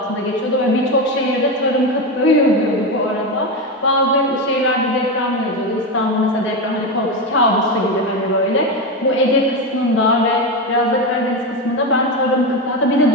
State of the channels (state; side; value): normal; both; correlation 0.15